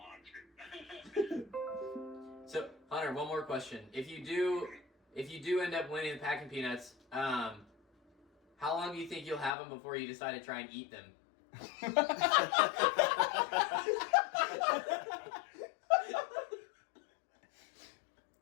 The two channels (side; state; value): right; drops out; at 9.5 s